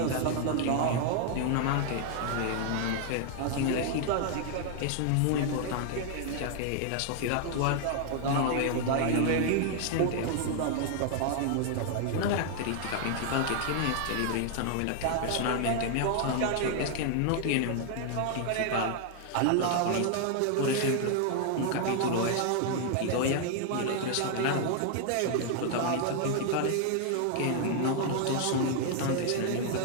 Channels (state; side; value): different; both; correlation 0.00